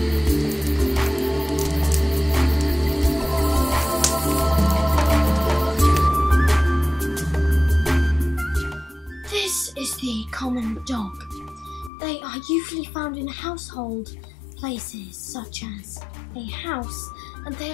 This is the common dog. They are usually found in household places such as a house, and they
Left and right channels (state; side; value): drops out; right; at 11.9 s